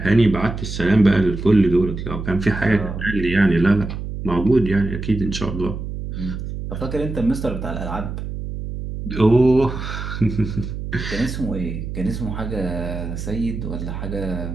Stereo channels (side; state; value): right; noise; hum, 6 dB below the sound